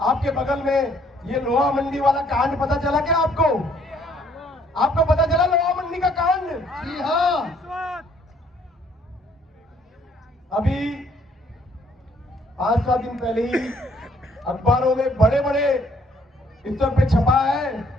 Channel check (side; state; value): both; normal; correlation 0.64